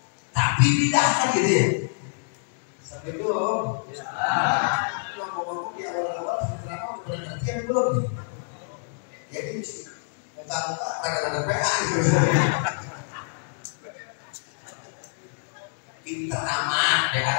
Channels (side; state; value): right; silent; digital silence